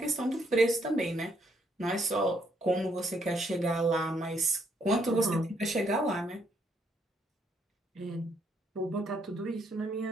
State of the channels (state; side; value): normal; both; correlation 0.72